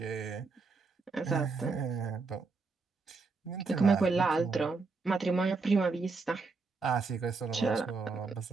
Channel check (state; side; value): quieter; left; 4.2 dB